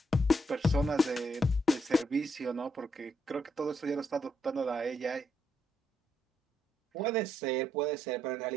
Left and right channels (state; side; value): normal; both; correlation 0.77